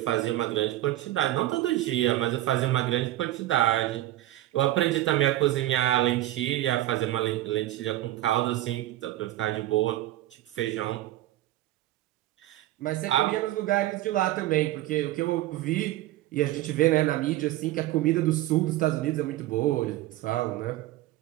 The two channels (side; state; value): left; quieter; 15.2 dB